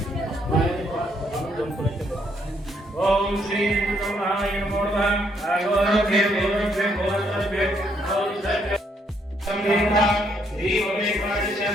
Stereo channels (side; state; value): both; normal; correlation 0.72